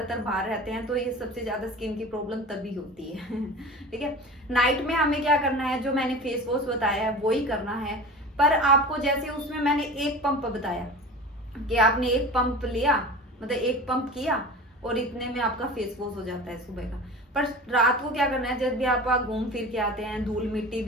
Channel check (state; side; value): normal; both; correlation 0.35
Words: बाहर रहते हैं तो ये सबसे ज्यादा स्किन की प्रॉब्लम तभी होती है। ठीक है, नाइट में हमें क्या करना है, जो मैंने फेस वॉश बताया है वो ही करना है। पर आपको जैसे उसमें मैंने एक पंप बताया कि आपने एक पंप लिया, मतलब एक पंप किया और इतने में आपका फेस वॉश हो जाता है सुबह का। पर रात को क्या करना है, जब भी आप घूम फिर के आते हैं, धूल मिट्टी